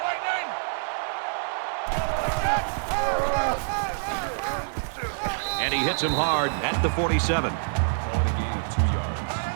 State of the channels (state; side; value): silent; left; 61 dB below the other